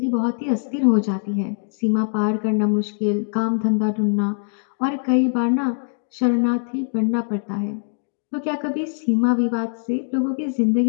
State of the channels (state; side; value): silent; right; 60 dB below the other